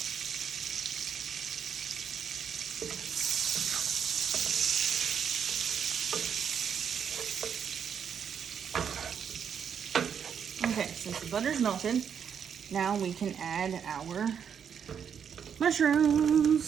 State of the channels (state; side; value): quieter; left; 7.7 dB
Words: Okay, since the butter's melted, now we can add our